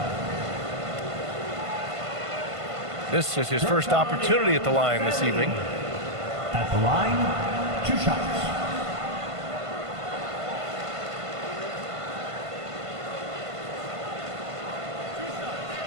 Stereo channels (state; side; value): late; left; 1.5 ms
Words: This is his first opportunity at the line this evening. At the line, 2 shots.